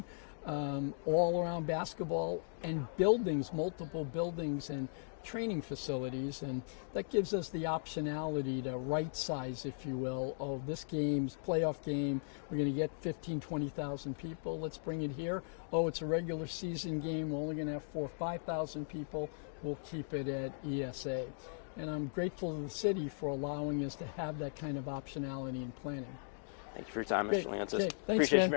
all around basketball, and buildings, multiple buildings and training facilities. And that gives us the optionality to right size, if you will, oh, this game's playoff game, we're going to get 15, 20,000 people. Let's bring it here. Oh, it's a regular season game. We're only going to have 4,000 or 5,000 people. We'll keep it at ESA. And I'm grateful to the city for allowing us to have that kind of optionality in planning. Thank you for your time, Great. Mr. Leonsis. Okay. Thanks, Appreciate man. you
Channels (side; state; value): right; silent; digital silence